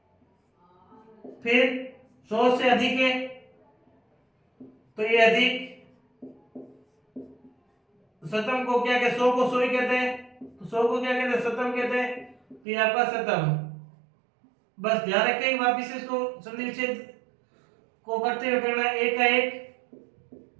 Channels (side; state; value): left; drops out; at 12.6 s